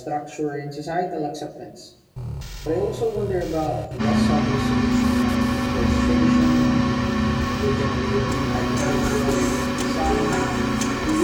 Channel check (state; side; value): identical; both; correlation 1.00